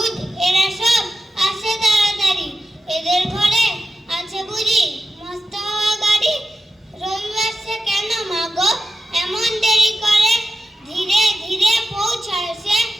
এরা সব আসে তাড়াতাড়ি, এদের ঘরে আছে বুঝি মস্ত হওয়া গাড়ি। রবিবার সে কেন মাগো এমন দেরি করে, ধীরে ধীরে পৌঁছায় সে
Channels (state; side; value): normal; both; correlation 0.91